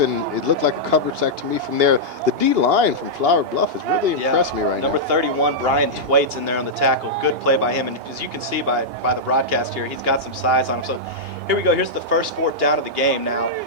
and it looked like a coverage sack to me from there. The D-line from Flower Bluff has really impressed me right now. Number 31, Brian Twait's in there on the tackle. Good play by him, and as you can see by the broadcast here, he's got some size on him. So here we go. Here's the first 4th down of the game now.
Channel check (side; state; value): left; late; 2.8 ms